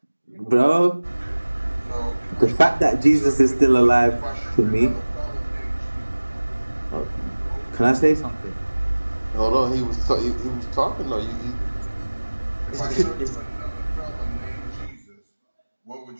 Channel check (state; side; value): inverted; both; correlation -1.00